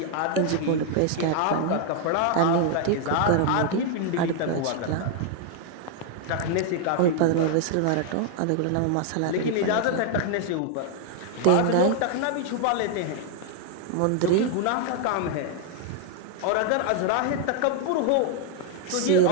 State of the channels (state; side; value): different; both; correlation 0.00